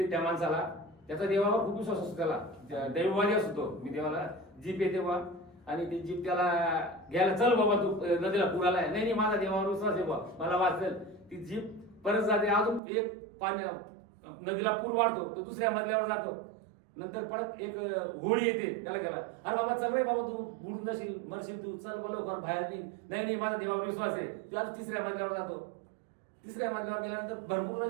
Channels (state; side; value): drops out; left; at 12.8 s